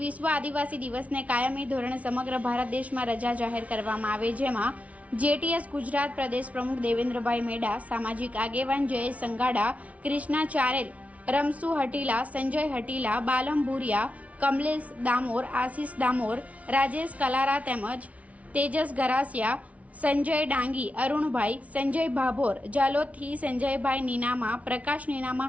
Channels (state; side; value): late; left; 0.067 ms